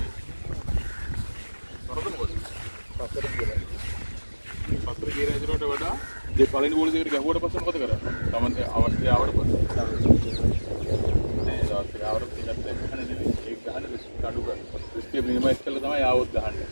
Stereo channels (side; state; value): both; inverted; correlation -1.00